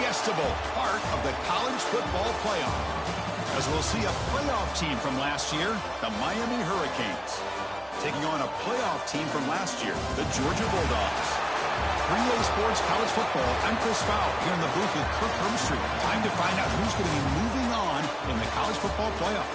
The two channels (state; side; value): identical; both; correlation 1.00